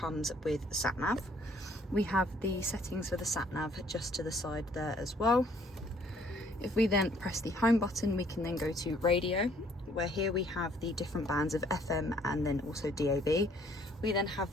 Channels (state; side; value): normal; both; correlation 0.62